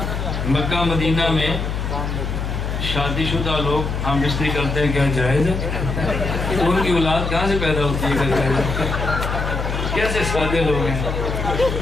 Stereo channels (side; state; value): left; noise; hum, 3 dB below the sound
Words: مکہ مدینہ میں شادی شدہ لوگ ہم بستری کرتے ہیں، کیا جائز ہے؟ ان کی اولاد کہاں سے پیدا ہوتی ہے؟ کیا جائز ہے؟ کیسے سادے لوگ ہیں؟